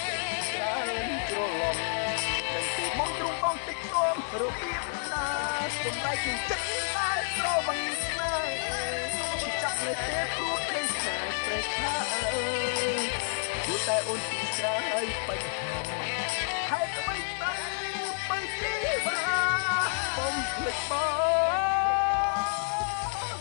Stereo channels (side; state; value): right; silent; digital silence